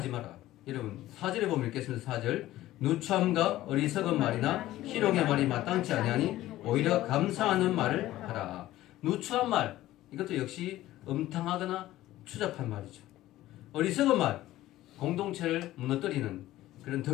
마라. 여러분 4절에 보면 읽겠습니다. 4절. 누추함과 어리석은 말이나 희롱의 말이 마땅치 아니하니 오히려 감사하는 말을 하라. 누추한 말. 이것도 역시 음탕하거나 추잡한 말이죠. 어리석은 말. 공동체를 무너뜨리는 그런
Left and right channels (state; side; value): quieter; right; 15.3 dB